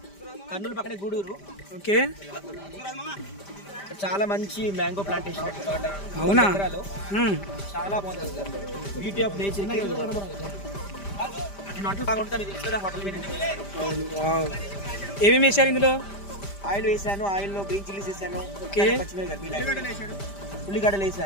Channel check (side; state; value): right; late; 5.0 ms